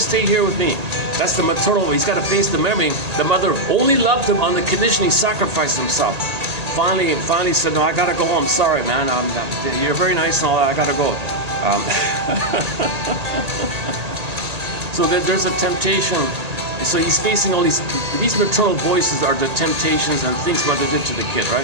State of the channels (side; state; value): left; late; 1.8 ms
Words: here with me. That's the maternal way. He's got to face the memory. The mother only loved him on the condition he sacrificed himself. Finally said, no, I gotta go home. Sorry, man. You're very nice and all that. I gotta go. So there's a temptation. So he's facing all these maternal voices are the temptations and things mother did to the kid,